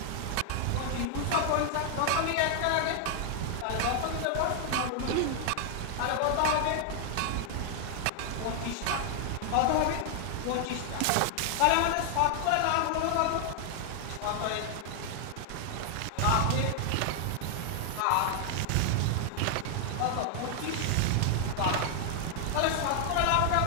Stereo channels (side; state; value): both; different; correlation 0.00